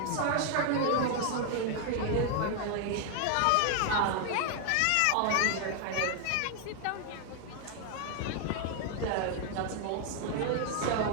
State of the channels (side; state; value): both; different; correlation 0.00